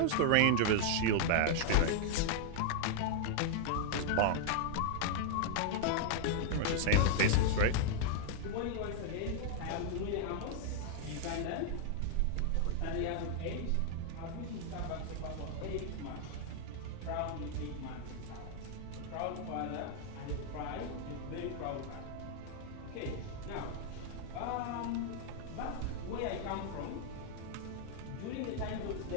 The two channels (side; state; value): both; different; correlation 0.00